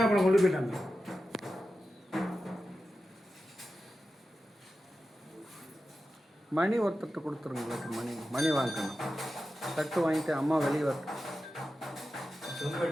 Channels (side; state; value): both; normal; correlation 0.92